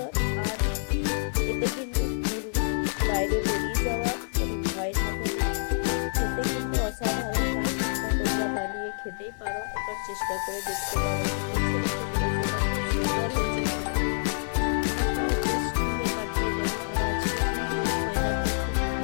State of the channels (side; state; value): right; silent; 60 dB below the other